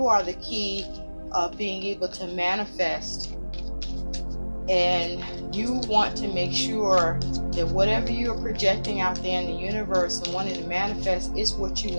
are the key of being able to manifest. And you want to make sure that whatever you're projecting out there in the universe and wanting to manifest is what you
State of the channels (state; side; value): inverted; both; correlation -1.00